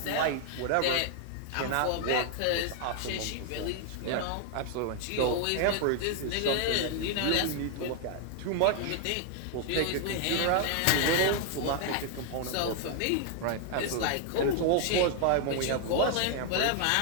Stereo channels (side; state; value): both; different; correlation 0.00